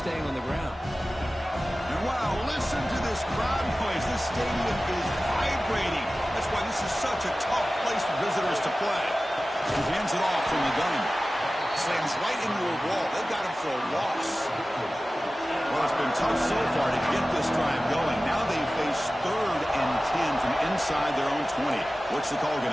on the ground. And wow, listen to this crowd noise. This stadium is vibrating. That's why this is such a tough place for visitors to play. He hands it off from the gun. Slams right into a wall. They got him for a loss. Well, it's been tough so far to get this drive going. Now they face 3rd and 10 from inside their own 20. What's the call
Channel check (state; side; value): normal; both; correlation 0.96